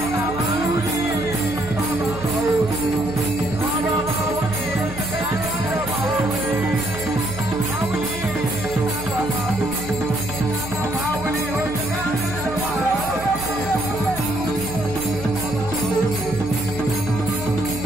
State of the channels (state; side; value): noise; right; hum, 12 dB below the sound